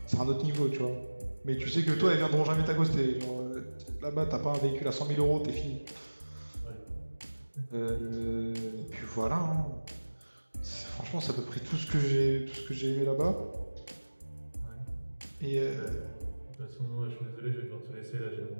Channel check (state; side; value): inverted; both; correlation -1.00